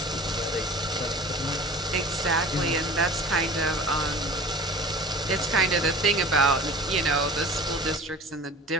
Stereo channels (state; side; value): normal; both; correlation 0.40